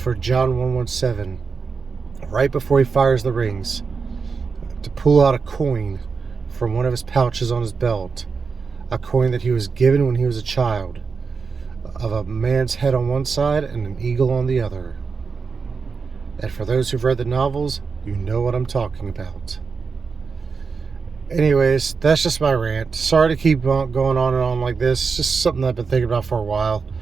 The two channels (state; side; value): quieter; left; 5.1 dB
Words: John 117, right before he fires the rings, to pull out a coin from one of his pouches on his belt, a coin that he was given when he was a child, of a man's head on one side and an eagle on the other. And for those who've read the novels, you know what I'm talking about. Anyways, that's just my rant. Sorry to keep going on and on like this. It's just something I've been thinking about for a while.